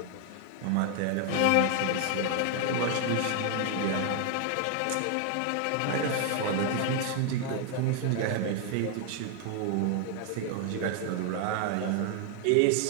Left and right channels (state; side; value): different; both; correlation 0.00